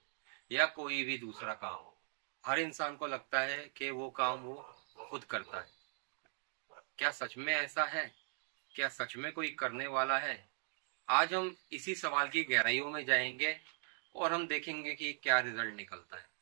या कोई भी दूसरा काम हो, हर इंसान को लगता है कि वो काम वो खुद करता है। क्या सच में ऐसा है? क्या सच में कोई करने वाला है? आज हम इसी सवाल की गहराइयों में जाएंगे और हम देखेंगे कि क्या रिजल्ट निकलता है।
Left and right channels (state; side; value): silent; left; 51 dB below the other